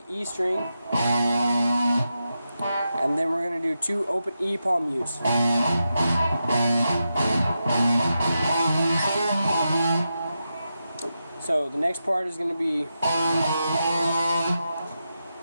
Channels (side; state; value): both; inverted; correlation -0.88